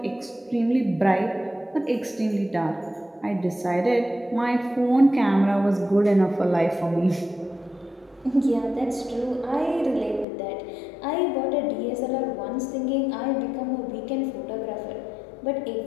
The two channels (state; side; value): drops out; right; at 10.2 s